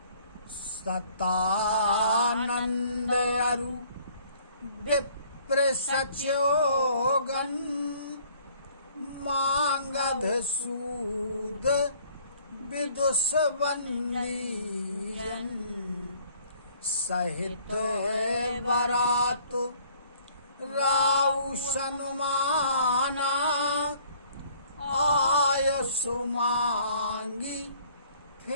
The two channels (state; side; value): inverted; both; correlation -0.58